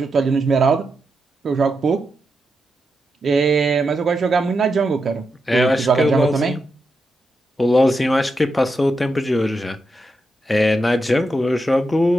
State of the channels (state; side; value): normal; both; correlation 0.86